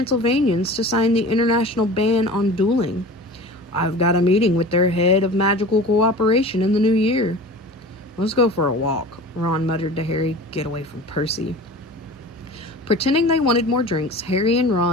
to sign the international ban on dueling. I've got a meeting with their head of magical cooperation in the new year." "Let's go for a walk," Ron muttered to Harry. "Get away from Percy." Pretending they wanted more drinks, Harry and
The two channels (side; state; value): both; normal; correlation 0.38